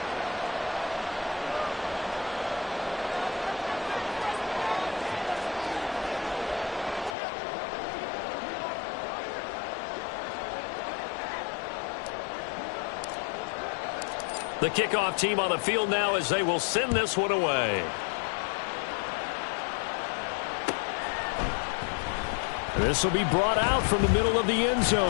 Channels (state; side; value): drops out; right; at 7.2 s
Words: The kickoff team on the field now as they will send this one away. This will be brought out from the middle of the end